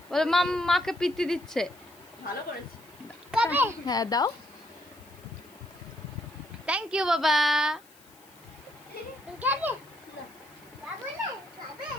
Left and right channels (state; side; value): noise; left; hiss, 26 dB below the sound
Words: বলে মাকে পিত্তি দিচ্ছে। ভালো করেছি। হ্যাঁ দাও। থ্যাংক ইউ বাবা।